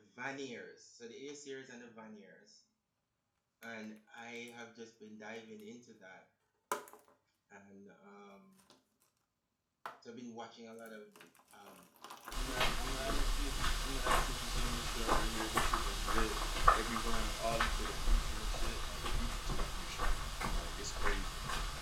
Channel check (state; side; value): identical; both; correlation 1.00